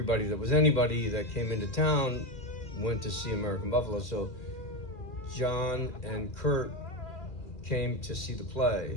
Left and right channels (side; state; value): right; late; 2.4 ms